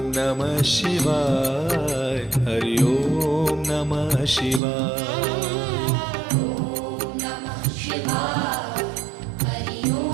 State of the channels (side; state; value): left; drops out; at 4.6 s